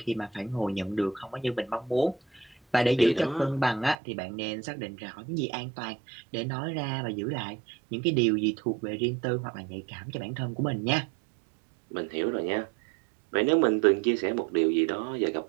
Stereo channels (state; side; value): drops out; left; at 4.0 s